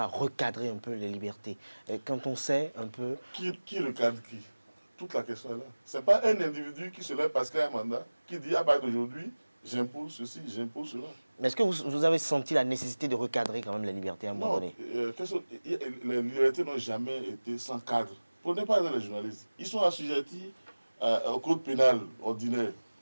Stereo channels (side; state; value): both; inverted; correlation -1.00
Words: recadrer un peu les libertés? Et quand on sait un peu... Qui recadre qui? toute la question est là. Ce n'est pas un individu qui se lève parce qu'il a un mandat, qui dit à partir d'aujourd'hui, j'impose ceci, j'impose cela. Mais est-ce que vous avez senti la nécessité de recadrer quand même les libertés à un moment donné? Les libertés n'ont jamais été sans cadre. Prenez par exemple les journalistes. Ils sont assujettis au code pénal ordinaire.